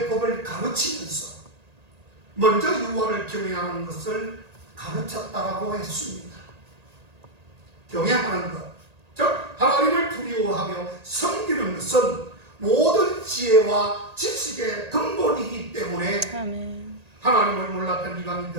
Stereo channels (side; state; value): left; late; 1.8 ms